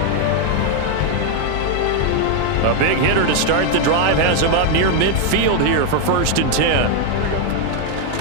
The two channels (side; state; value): both; different; correlation 0.01